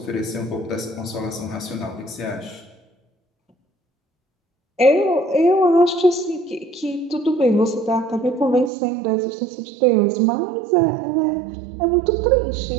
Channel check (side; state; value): left; drops out; at 8.7 s